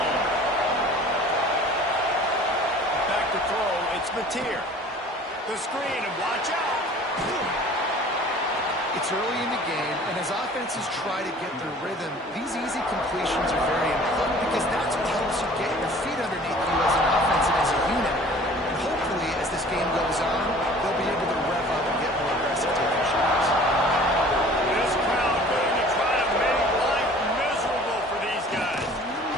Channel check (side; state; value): both; normal; correlation 0.48